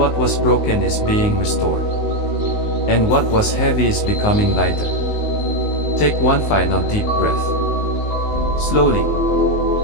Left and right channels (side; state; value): right; late; 19 ms